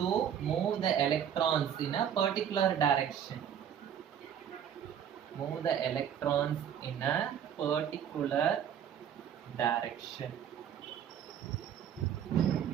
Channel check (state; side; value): quieter; left; 9.0 dB